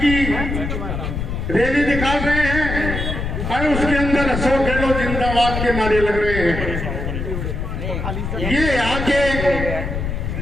रैली निकाल रहे हैं और उसके अंदर अशोक गहलोत जिंदाबाद के नारे लग रहे हैं। ये यहाँ के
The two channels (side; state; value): left; noise; rumble, 3 dB below the sound